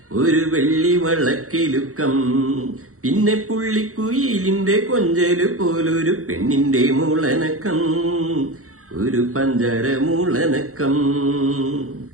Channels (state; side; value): late; left; 0.64 ms